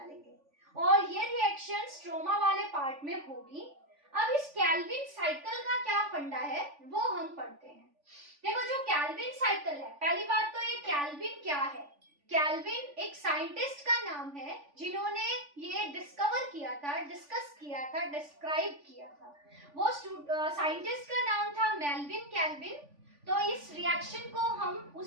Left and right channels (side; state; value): left; late; 3.5 ms